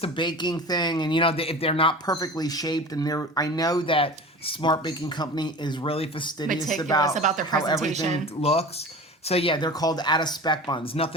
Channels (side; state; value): both; normal; correlation 0.36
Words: a baking thing, and if they're not perfectly shaped, and I know that Smart Baking Company is really fastidious Meticulous about their how presentation. everything looks. So yeah, they're called out of spec buns.